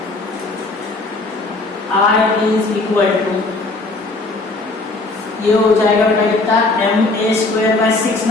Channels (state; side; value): quieter; right; 3.2 dB